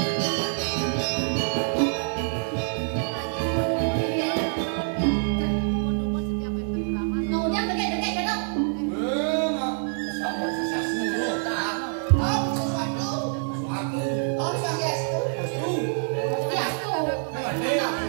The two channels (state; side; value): silent; left; digital silence